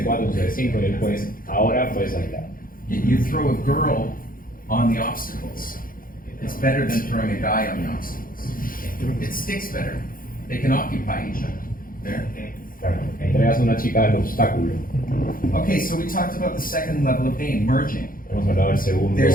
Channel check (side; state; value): right; late; 0.41 ms